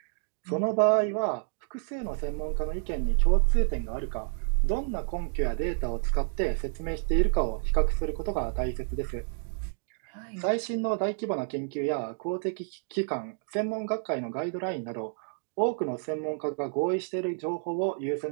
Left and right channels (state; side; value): silent; left; digital silence